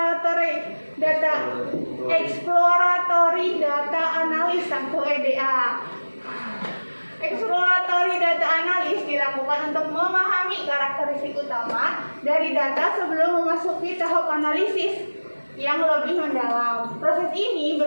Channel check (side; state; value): both; inverted; correlation -1.00